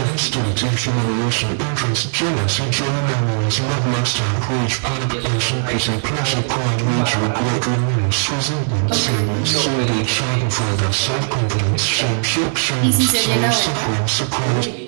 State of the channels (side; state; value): left; silent; 67 dB below the other